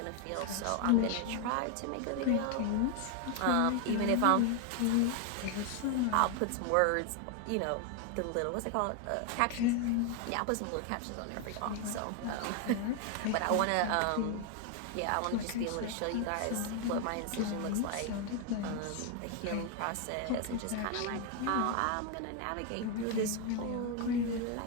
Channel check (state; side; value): different; both; correlation 0.01